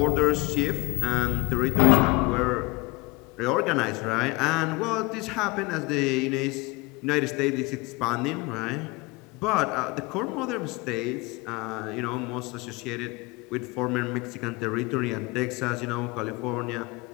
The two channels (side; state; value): right; quieter; 24.3 dB